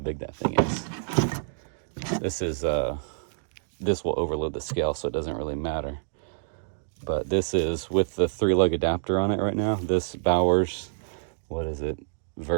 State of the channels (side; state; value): left; silent; digital silence